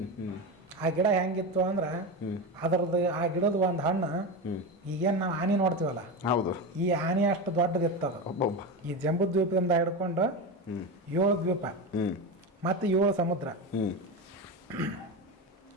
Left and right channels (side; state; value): both; normal; correlation 0.20